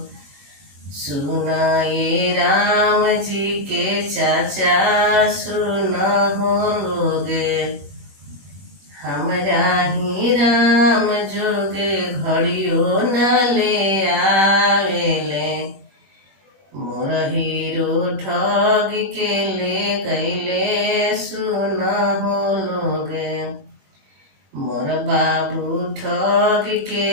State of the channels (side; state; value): left; late; 21 ms